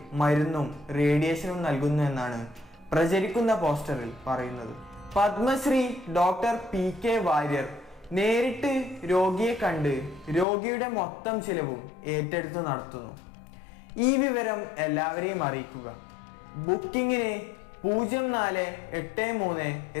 മരുന്നും റേഡിയേഷനും നൽകുന്നു എന്നാണ് പ്രചരിക്കുന്ന പോസ്റ്ററിൽ പറയുന്നത്. പത്മശ്രീ ഡോക്ടർ PK വാര്യർ നേരിട്ട് രോഗിയെ കണ്ട് രോഗിയുടെ മൊത്തം ചിലവും ഏറ്റെടുത്ത് നടത്തുന്നു. ഈ വിവരം എല്ലാവരെയും അറിയിക്കുക. ബുക്കിങ്ങിന്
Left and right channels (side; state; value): right; drops out; at 10.5 s